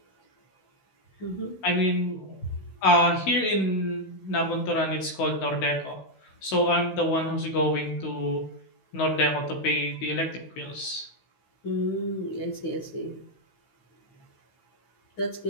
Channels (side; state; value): right; late; 16 ms